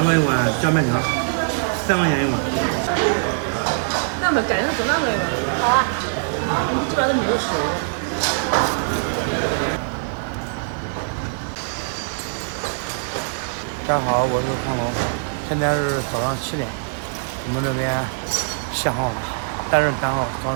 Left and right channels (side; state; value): left; silent; digital silence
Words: 了一碗酱面条，3块钱一碗。那么改成是那个，这边都没有吃。大家好，我是康龙，现在是早上7点，我们这边限号了，单人单号，双